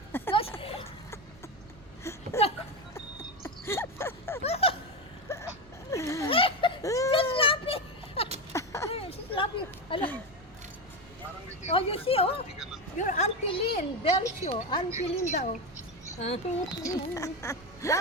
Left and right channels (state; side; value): noise; right; rumble, 22 dB below the sound